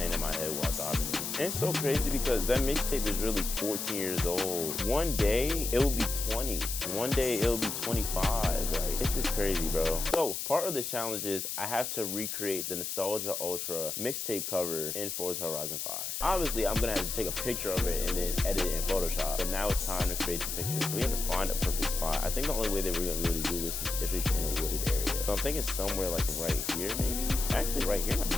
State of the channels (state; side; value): noise; left; hiss, 4 dB below the sound